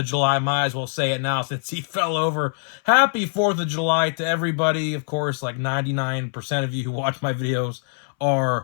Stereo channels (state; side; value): silent; right; 61 dB below the other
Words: July. Might as well say it now since he fell over. Happy 4th of July to everybody. Of course, like 99% of you who watch my videos